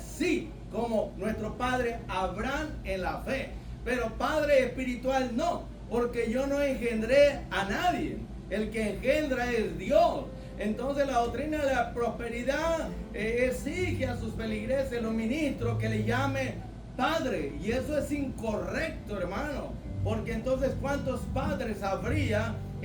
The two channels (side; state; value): both; identical; correlation 1.00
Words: como nuestro padre Abraham en la fe. Pero Padre espiritual no, porque yo no engendré a nadie. El que engendra es Dios. Entonces la doctrina de la prosperidad exige a sus feligreses, los ministros, que le llame Padre. Y eso es incorrecto, hermano. Porque entonces, ¿cuántos padres habría